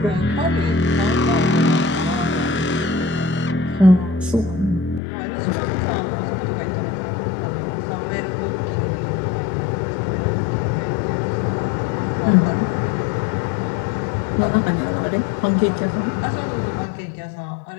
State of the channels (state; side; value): drops out; right; at 5.0 s